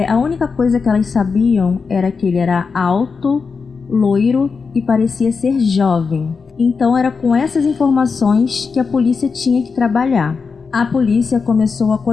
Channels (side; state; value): right; quieter; 5.1 dB